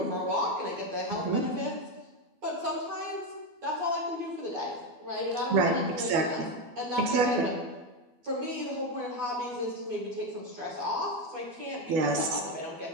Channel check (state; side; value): late; left; 12 ms